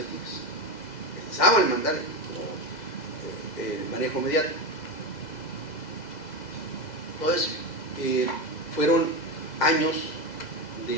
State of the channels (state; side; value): late; right; 2.0 ms